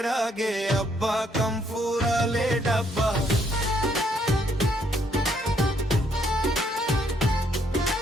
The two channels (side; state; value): both; normal; correlation 0.70